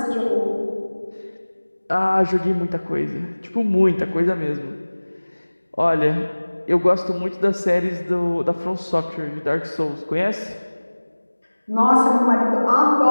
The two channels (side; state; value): both; inverted; correlation -1.00